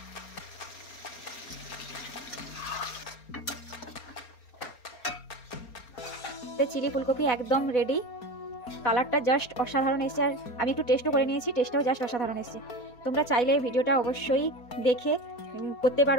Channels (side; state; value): right; late; 4.1 ms